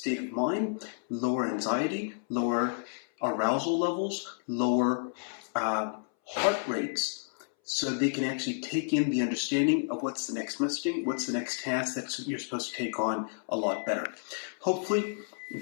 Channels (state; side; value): silent; right; 57 dB below the other